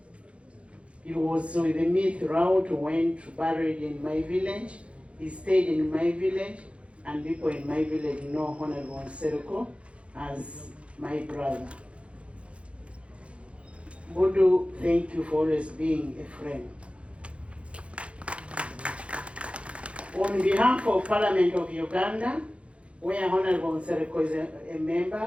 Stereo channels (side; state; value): left; late; 0.061 ms